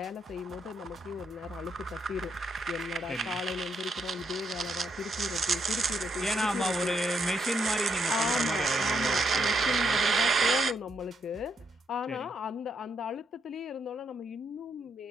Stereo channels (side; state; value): both; normal; correlation 0.78